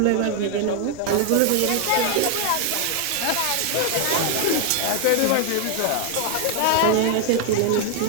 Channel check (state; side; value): different; both; correlation 0.00